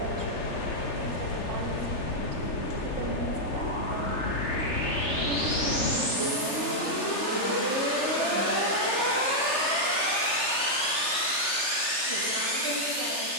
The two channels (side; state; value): right; late; 3.4 ms